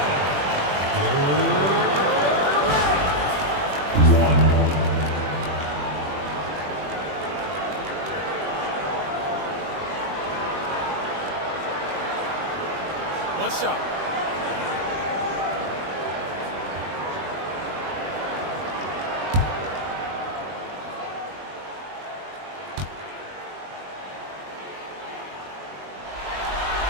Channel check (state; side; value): late; left; 21 ms